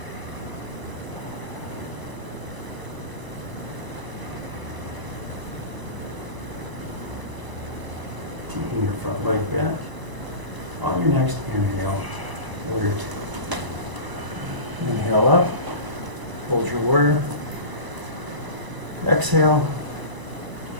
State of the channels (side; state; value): left; late; 1.0 ms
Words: Keeping your front leg bent. On your next inhale, warrior two. Inhale up, hold your warrior. Exhale.